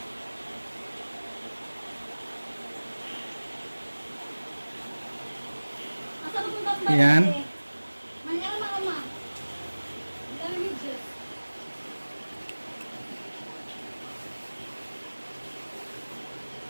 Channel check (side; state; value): both; inverted; correlation -1.00